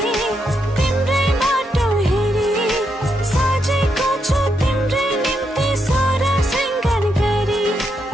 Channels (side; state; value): both; normal; correlation 0.81